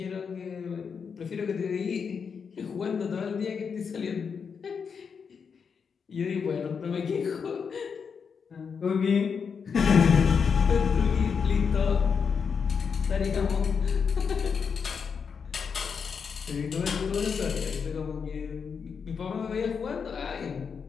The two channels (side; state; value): right; quieter; 6.2 dB